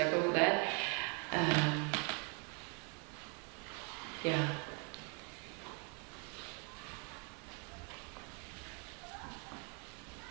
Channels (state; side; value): quieter; left; 35.4 dB